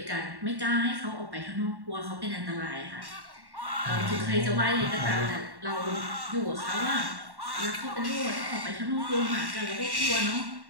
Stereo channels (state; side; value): late; left; 1.1 ms